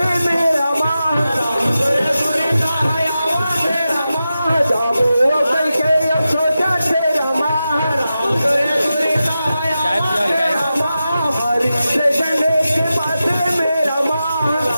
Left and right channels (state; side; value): inverted; both; correlation -0.92